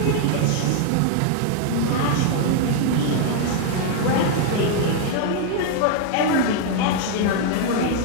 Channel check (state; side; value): different; both; correlation 0.00